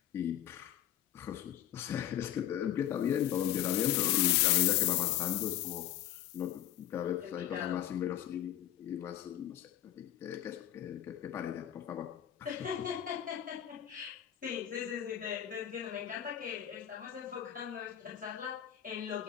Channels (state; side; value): quieter; right; 11.8 dB